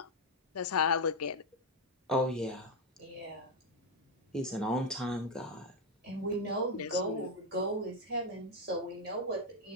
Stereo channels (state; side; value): normal; both; correlation 0.04